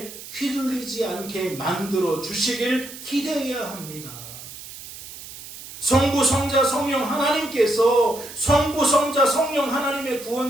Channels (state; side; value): noise; right; hiss, 14 dB below the sound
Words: 휘둘리지 않게 만들어 주시길 기대해야 합니다. 성부, 성자, 성령 하나님께서 성부, 성자, 성령 하나님의